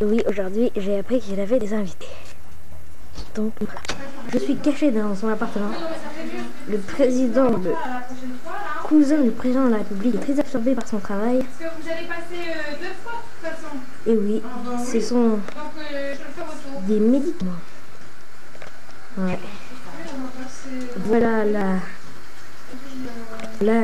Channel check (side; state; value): both; identical; correlation 1.00